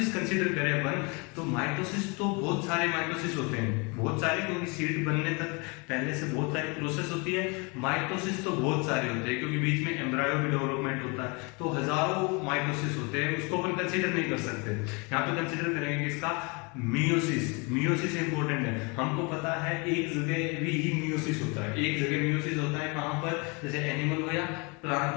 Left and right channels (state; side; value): quieter; right; 30.3 dB